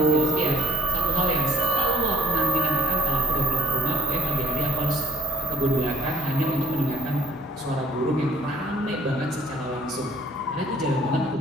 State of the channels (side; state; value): both; normal; correlation 0.58